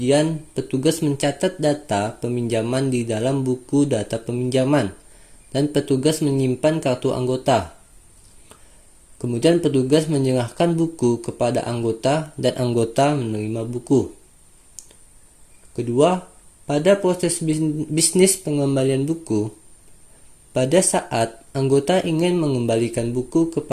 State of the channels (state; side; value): identical; both; correlation 1.00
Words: petugas mencatat data peminjaman di dalam buku data peminjaman, dan petugas menyimpan kartu anggota. Kemudian, petugas menyerahkan buku kepada anggota, dan anggota menerima buku. Kedua, pada proses bisnis pengembalian buku, pada saat anggota ingin mengembalikan buku